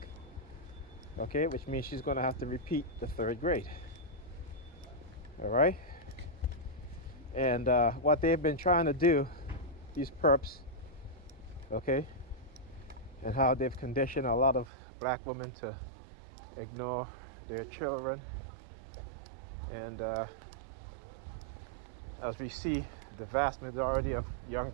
okay, which means she's going to have to repeat the third grade. All right, and what they've been trying to do, these perps, okay, and how they've conditioned a lot of black women to ignore their children, and as we see, the vast majority of young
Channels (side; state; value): left; drops out; at 14.7 s